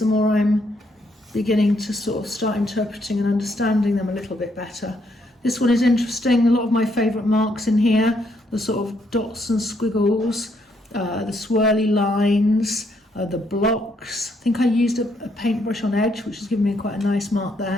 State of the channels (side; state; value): both; normal; correlation 0.73